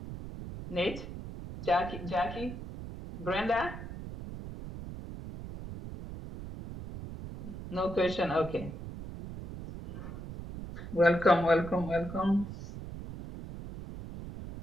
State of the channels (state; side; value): noise; right; rumble, 10 dB below the sound